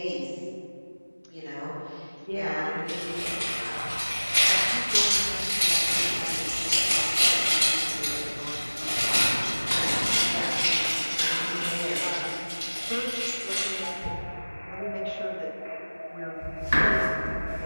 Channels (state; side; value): inverted; both; correlation -1.00